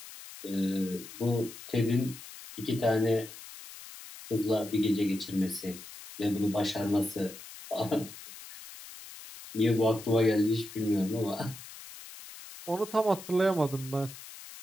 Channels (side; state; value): left; noise; hiss, 15 dB below the sound